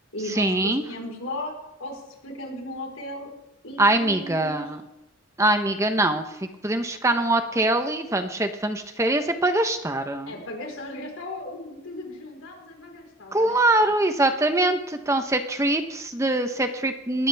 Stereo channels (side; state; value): both; normal; correlation 0.45